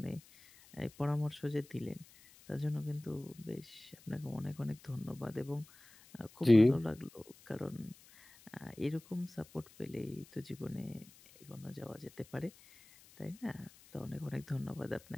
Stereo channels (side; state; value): left; noise; hiss, 23 dB below the sound